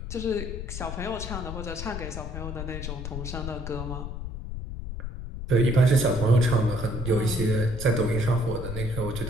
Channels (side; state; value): left; noise; rumble, 7 dB below the sound